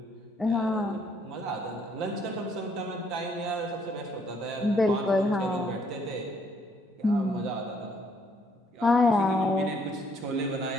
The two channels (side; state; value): both; normal; correlation 0.68